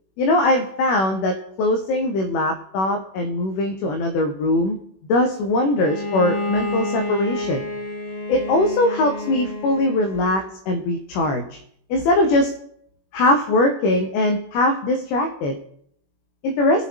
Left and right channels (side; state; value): right; late; 21 ms